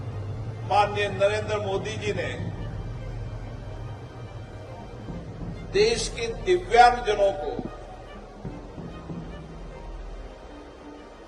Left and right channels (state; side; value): identical; both; correlation 1.00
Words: माननीय नरेंद्र मोदी जी ने देश के दिव्यांगजनों को